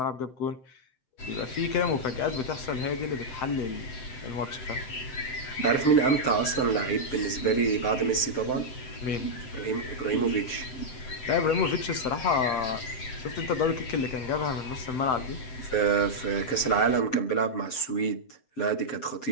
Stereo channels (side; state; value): right; late; 7.7 ms